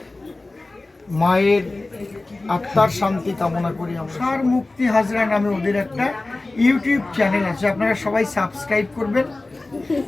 মায়ের আত্মার শান্তি কামনা করি। তুষার মুক্তি হাজরা নামে ওদের একটা ইউটিউব চ্যানেল আছে, আপনারা সবাই সাবস্ক্রাইব করবেন।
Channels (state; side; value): quieter; right; 3.1 dB